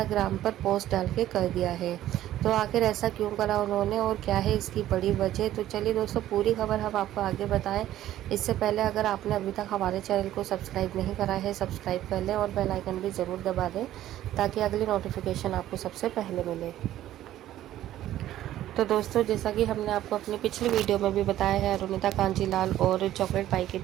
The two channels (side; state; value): left; quieter; 13.2 dB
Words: पर पोस्ट डाल के कर दिया है। तो आखिर ऐसा क्यों करा उन्होंने और क्या है इसकी बड़ी वजह, तो चलिए दोस्तों, पूरी खबर हम आपको आगे बताएं। इससे पहले अगर आपने अभी तक हमारे चैनल को सब्सक्राइब नहीं करा है, सब्सक्राइब कर लें और बेल आइकन भी ज़रूर दबा दें ताकि अगली नोटिफिकेशन आपको सबसे पहले मिले। तो दोस्तों, जैसा कि हमने आपको अपनी पिछली वीडियो में भी बताया है, अरुणिता कांजीलाल और चॉकलेट पाई के